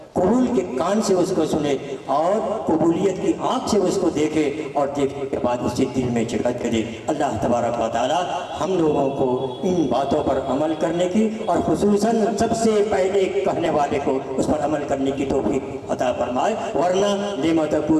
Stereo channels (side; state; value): both; identical; correlation 1.00